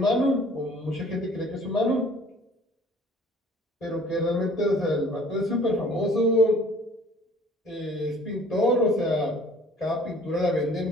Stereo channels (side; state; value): both; normal; correlation 0.53